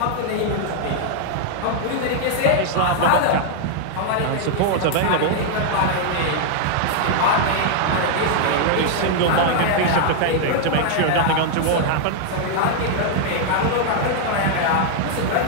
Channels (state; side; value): different; both; correlation 0.00